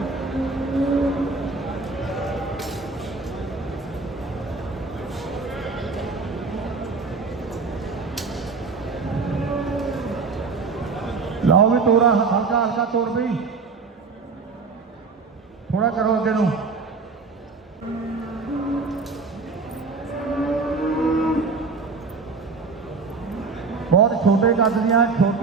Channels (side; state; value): left; quieter; 4.4 dB